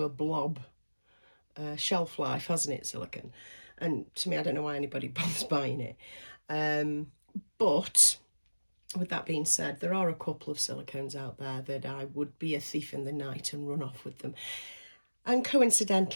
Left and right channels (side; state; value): both; inverted; correlation -1.00